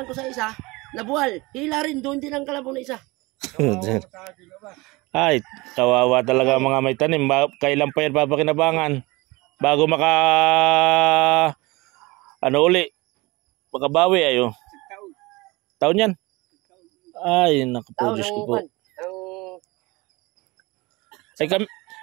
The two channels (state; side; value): quieter; left; 23.1 dB